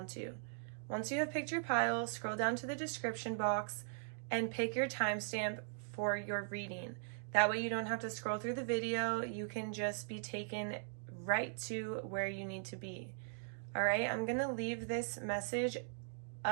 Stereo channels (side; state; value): left; silent; digital silence